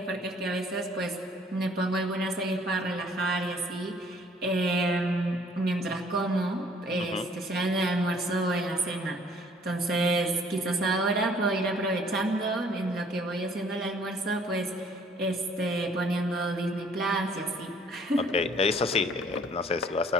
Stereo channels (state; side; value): normal; both; correlation 0.58